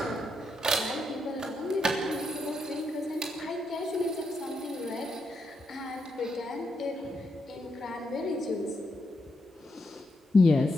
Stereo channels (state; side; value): normal; both; correlation 0.82